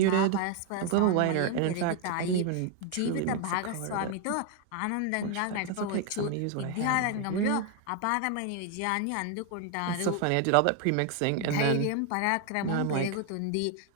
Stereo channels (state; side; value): different; both; correlation 0.01